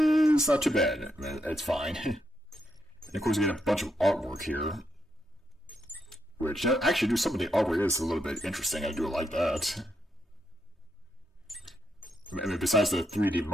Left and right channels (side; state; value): both; normal; correlation 0.81